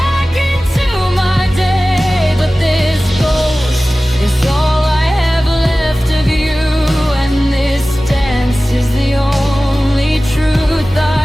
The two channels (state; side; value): normal; both; correlation 0.97